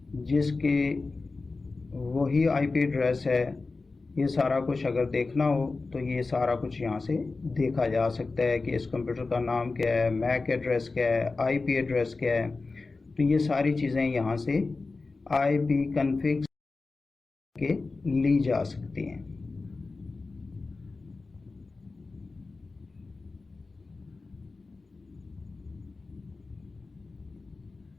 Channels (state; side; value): quieter; right; 3.8 dB